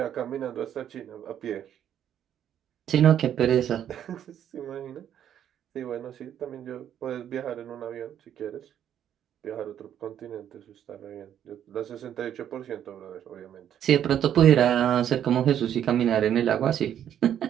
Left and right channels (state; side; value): quieter; left; 10.0 dB